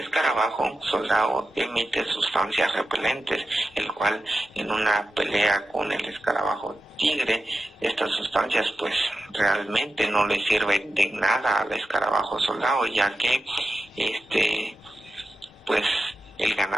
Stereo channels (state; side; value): normal; both; correlation 0.91